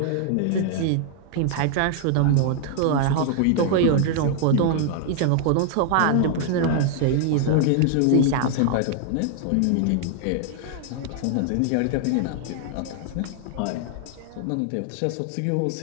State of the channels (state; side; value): different; both; correlation 0.00